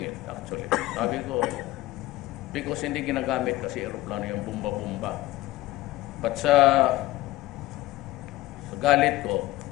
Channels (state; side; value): quieter; right; 17.3 dB